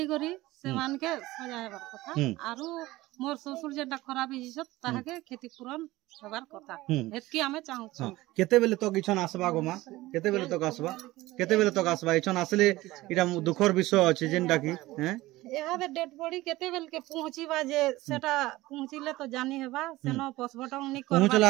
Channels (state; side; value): quieter; left; 18.4 dB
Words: करी से मान के सजा हेबार कथा आरो मोर ससुर जेटा खराब हिसत ताहा के क्षतिपूरण हेबार कथा एतकी हमें चाहू छ केते बेले तो किछन आसबा गो मा केते बेले तो आसबा इछन आसले इटा दुखर विषय अछि जेनटा की हैं यहाँ पे डेड बॉडी केते बेल के पहुंचीबा जे सेटा पहुंचिले तो जानी हेबा सेनो पोस्टमार्टम नि